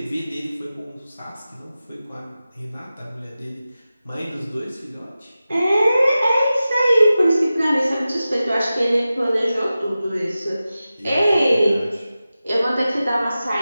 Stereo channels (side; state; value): both; inverted; correlation -0.94